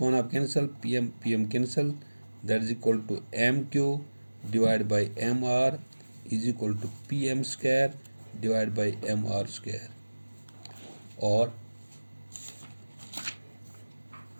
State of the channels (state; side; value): inverted; both; correlation -1.00